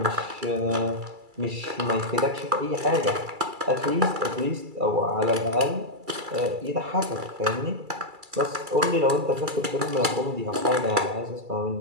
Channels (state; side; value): late; left; 2.3 ms